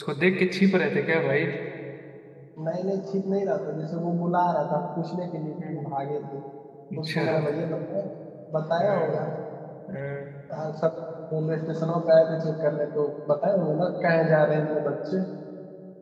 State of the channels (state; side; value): identical; both; correlation 1.00